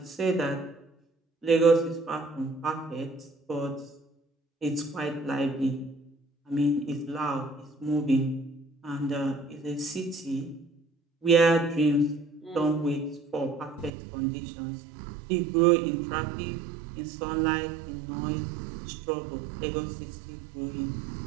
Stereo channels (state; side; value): drops out; left; at 13.9 s